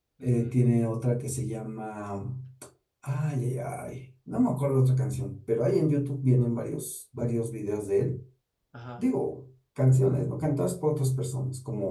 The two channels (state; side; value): identical; both; correlation 1.00